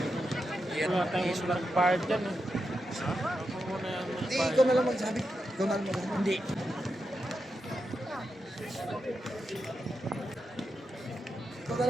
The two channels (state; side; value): normal; both; correlation 0.87